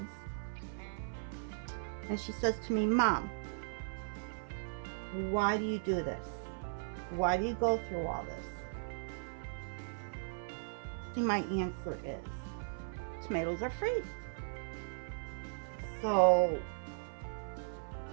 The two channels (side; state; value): left; silent; 53 dB below the other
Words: And she says to me, Mom, why do you do this? Why do you go through all this? And my answer is, tomatoes are free. So,